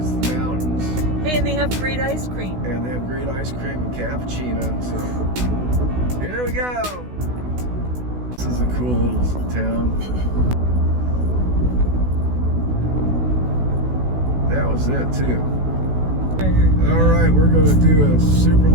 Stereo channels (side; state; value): left; late; 16 ms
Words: the mountains. Hey, and they have great ice cream. And they have great ice cream and cappuccino. So here we go. This is a cool little town. That was it too. All right, we're going to do a super